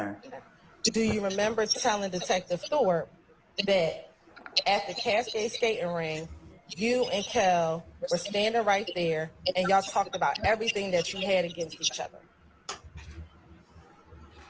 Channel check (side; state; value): both; identical; correlation 1.00